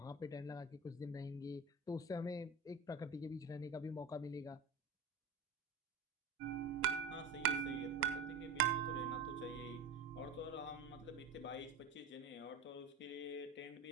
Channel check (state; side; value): quieter; left; 4.2 dB